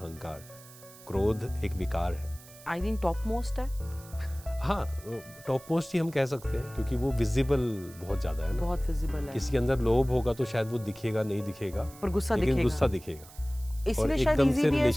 क्रोध एक विकार है, आई थिंक टॉप मोस्ट है। हाँ, टॉप मोस्ट ही हम कह सकते हैं, क्योंकि वो विजिबल बहुत ज़्यादा है ना, बहुत विजिबल है। किसी के अंदर लोभ होगा तो शायद वो दिखेगा नहीं दिखेगा, पर गुस्सा लेकिन दिखेगा। गुस्सा दिखेगा, इसलिए शायद इजी भी है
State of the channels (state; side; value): noise; right; hiss, 20 dB below the sound